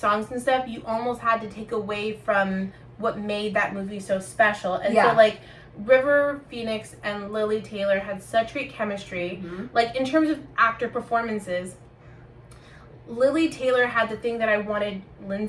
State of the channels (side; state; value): both; identical; correlation 1.00